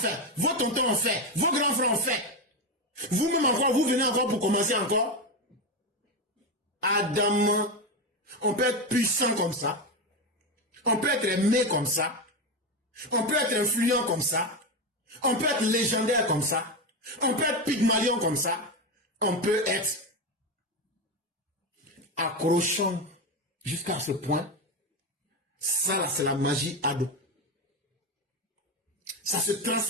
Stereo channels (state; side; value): normal; both; correlation 0.14